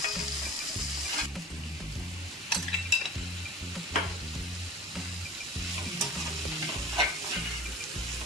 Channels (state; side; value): normal; both; correlation 0.40